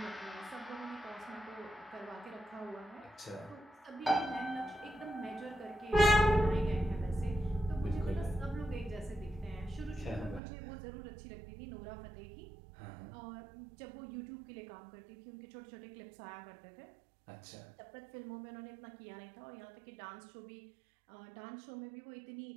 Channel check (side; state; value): left; drops out; at 10.4 s